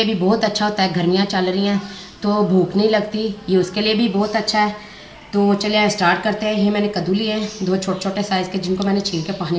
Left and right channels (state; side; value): identical; both; correlation 1.00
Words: भी बहुत अच्छा होता है। गर्मियाँ चल रही हैं तो भूख नहीं लगती, ये उसके लिए भी बहुत अच्छा है। तो चलिए स्टार्ट करते हैं। ये मैंने कद्दू लिए हैं दो छोटे छोटे साइज़ के, जिनको मैंने छील के पानी